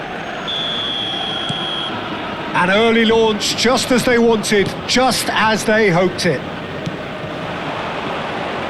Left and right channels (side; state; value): both; identical; correlation 1.00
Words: An early launch, just as they wanted, just as they hoped it.